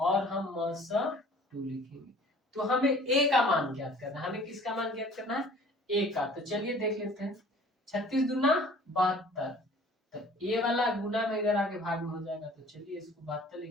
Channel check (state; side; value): normal; both; correlation 0.50